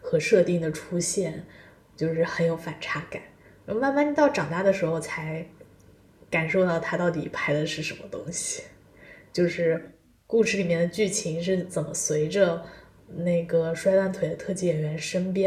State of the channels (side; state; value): both; identical; correlation 1.00